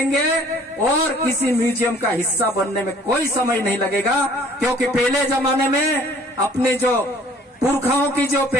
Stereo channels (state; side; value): normal; both; correlation 0.55